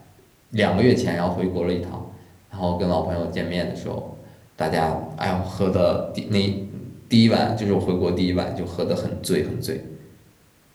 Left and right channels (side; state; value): both; identical; correlation 1.00